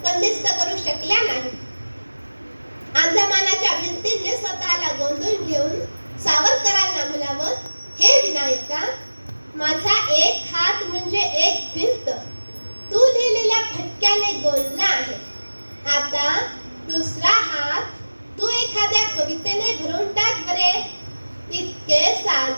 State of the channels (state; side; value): inverted; both; correlation -1.00